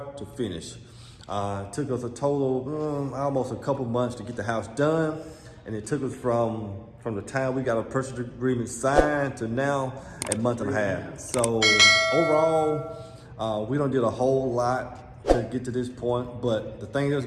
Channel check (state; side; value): identical; both; correlation 1.00